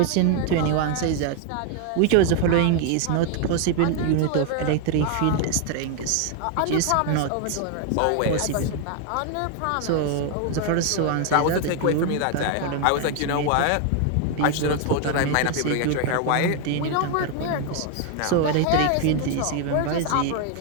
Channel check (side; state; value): both; different; correlation 0.00